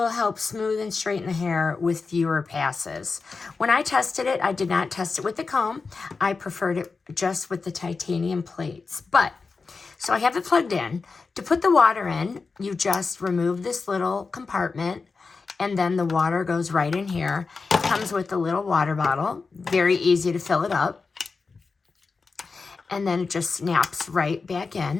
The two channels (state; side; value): quieter; right; 4.5 dB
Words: help smooth and straighten the hair with fewer passes. When I tested it, I did not test it with the comb. I preferred it just with the titanium plates. But, so I have it plugged in. To put the water in, you just remove this little compartment, and then the water goes right in here. It comes with a little water bottle. Very easy to fill it up. And then it just snaps right back